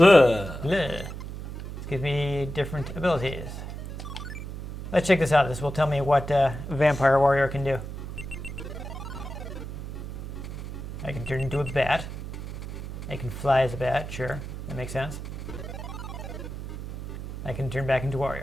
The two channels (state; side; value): noise; right; hum, 8 dB below the sound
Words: Bleh. This gives me different abilities. Let's check this out. This will tell me what Vampire Warrior can do. I can turn into a bat. I can fly as a bat, sure. That makes sense. I can turn back into